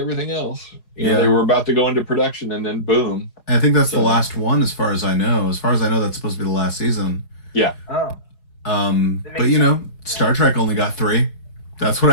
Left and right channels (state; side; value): late; right; 4.8 ms